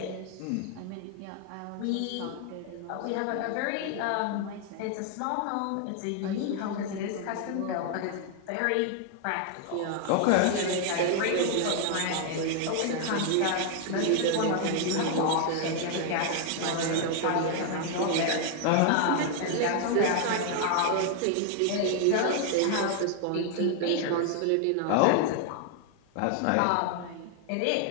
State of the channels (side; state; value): both; different; correlation 0.00